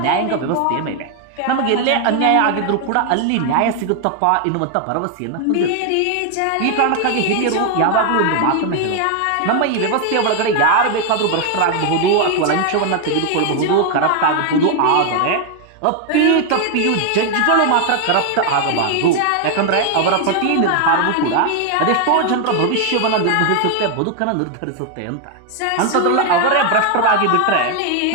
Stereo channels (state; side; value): different; both; correlation 0.01